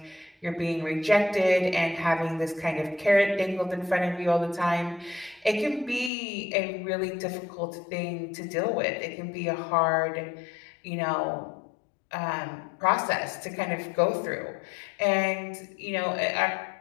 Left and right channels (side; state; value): right; drops out; at 6.1 s